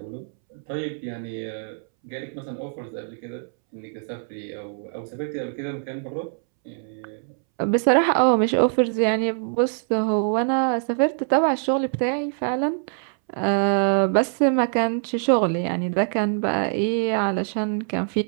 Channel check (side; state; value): left; silent; 63 dB below the other